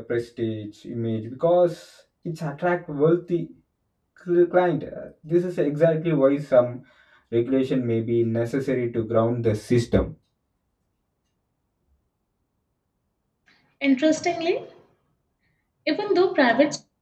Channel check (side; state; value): both; identical; correlation 1.00